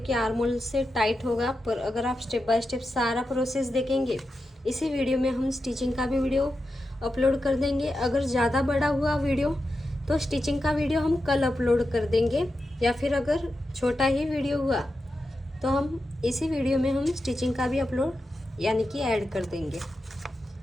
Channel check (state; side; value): normal; both; correlation 0.89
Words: आर्म होल से टाइट होगा, पर अगर आप स्टेप बाय स्टेप सारा प्रोसेस देखेंगे, इसी वीडियो में हम स्टिचिंग का भी वीडियो अपलोड कर देंगे। अगर ज़्यादा बड़ा हुआ वीडियो तो स्टिचिंग का वीडियो हम कल अपलोड कर देंगे, या फिर अगर छोटा ही वीडियो हुआ तो हम इसी वीडियो में हम स्टिचिंग का भी अपलोड यानी कि ऐड कर देंगे।